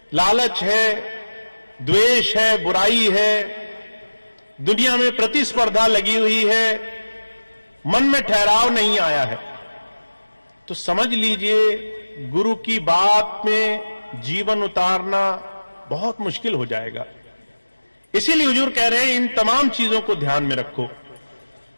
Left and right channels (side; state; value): both; inverted; correlation -1.00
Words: लालच है, द्वेष है, बुराई है, दुनिया में प्रतिस्पर्धा लगी हुई है, मन में ठहराव नहीं आया है, तो समझ लीजिए गुरु की बात में जीवन उतारना बहुत मुश्किल हो जाएगा। इसीलिए हुजूर कह रहे हैं इन तमाम चीजों को ध्यान में रखो।